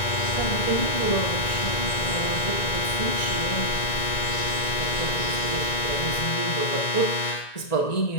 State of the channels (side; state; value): right; late; 1.9 ms